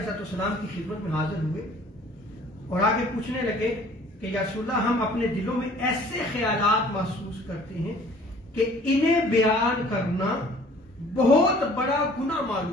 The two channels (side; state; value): both; normal; correlation 0.53